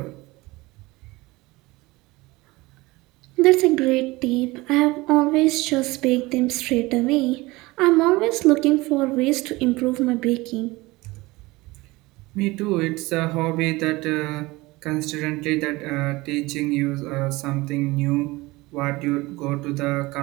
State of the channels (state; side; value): quieter; left; 21.4 dB